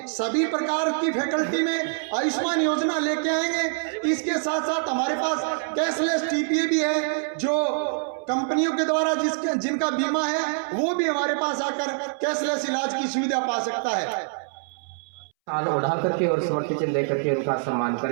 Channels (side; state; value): left; silent; 62 dB below the other